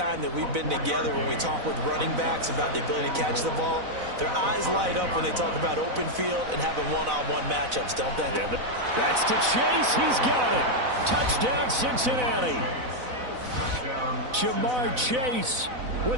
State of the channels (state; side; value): late; left; 4.0 ms